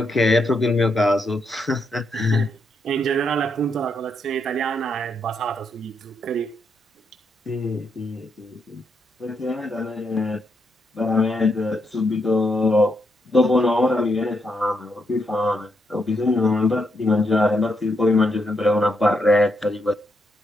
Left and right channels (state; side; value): normal; both; correlation 0.79